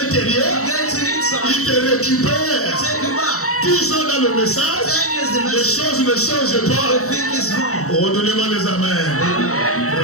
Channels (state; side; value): late; right; 0.64 ms